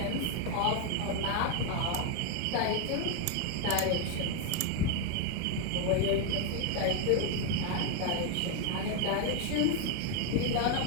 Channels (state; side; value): different; both; correlation 0.01